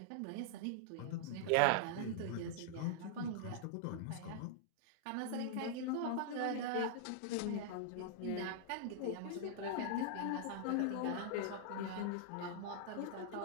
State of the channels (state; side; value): different; both; correlation -0.01